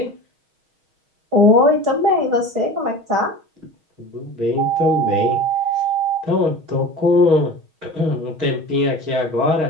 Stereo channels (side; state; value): left; late; 6.3 ms